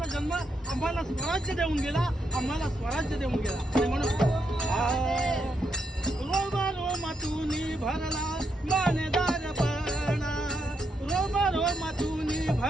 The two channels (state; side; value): normal; both; correlation 0.80